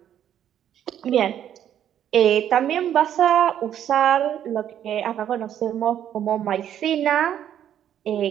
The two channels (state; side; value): quieter; left; 10.2 dB